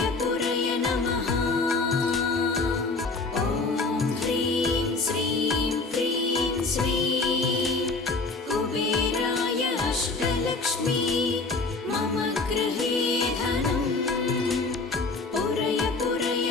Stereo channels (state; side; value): quieter; right; 3.7 dB